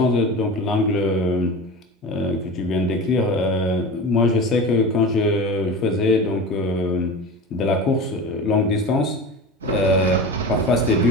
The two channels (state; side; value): normal; both; correlation 0.30